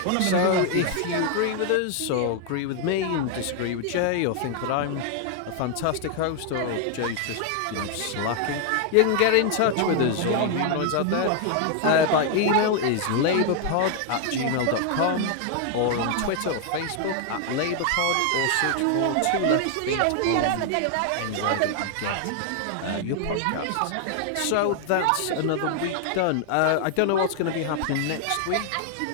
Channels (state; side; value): different; both; correlation 0.00